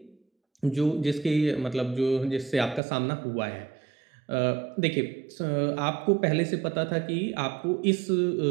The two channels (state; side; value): drops out; left; at 2.8 s